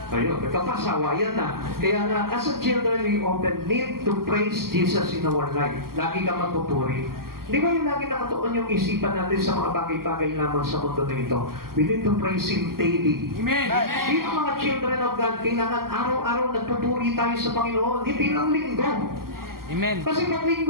Ayun, nagkapasawayan na. Kaya nga, as a children, we often need to praise Jesus in our life. Lagi ka magpupuri. Di ba yung lagi nakatuon yung isipan natin sa mga bagay-bagay lamang sa mundo na ito? We need to praise Him daily. Amen. Dito mga children of God, kailangan araw-araw nagpupuri tayo sa Panginoon, hindi lang linggo. Amen. Kasi pag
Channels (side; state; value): left; late; 0.92 ms